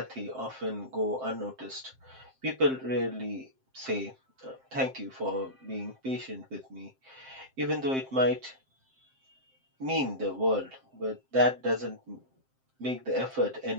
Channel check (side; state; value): left; late; 7.6 ms